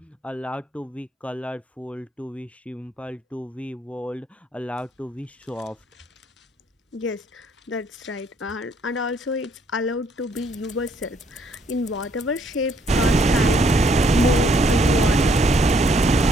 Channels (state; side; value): normal; both; correlation 0.68